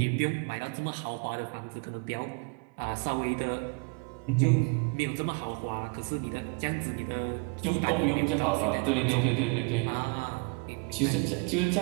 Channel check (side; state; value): left; quieter; 32.5 dB